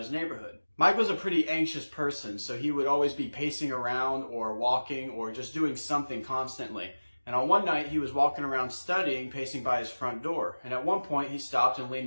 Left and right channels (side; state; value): both; inverted; correlation -1.00